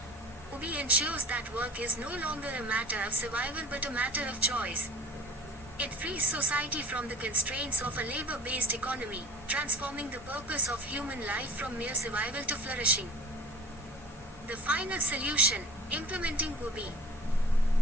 UBI ensures that work is no longer a matter of survival but a matter of choice. It frees society from the constraints of a labor-based economy, transforming the purpose of human life from mere survival to flourishing. The final solution, implementing UBI.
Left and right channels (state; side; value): normal; both; correlation 0.45